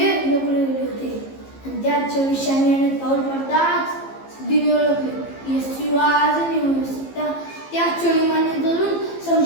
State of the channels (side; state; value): right; late; 15 ms